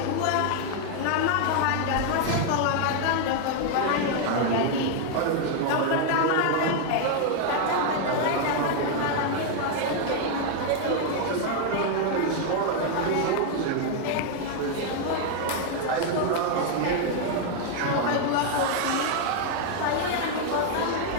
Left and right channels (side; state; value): both; different; correlation 0.00